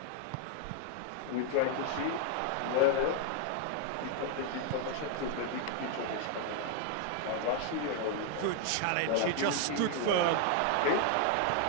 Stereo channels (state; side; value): different; both; correlation 0.00